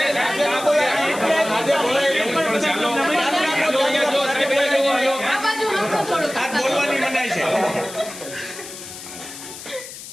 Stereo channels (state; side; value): noise; left; hiss, 13 dB below the sound